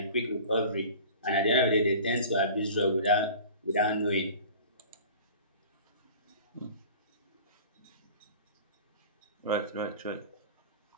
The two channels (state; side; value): inverted; both; correlation -0.41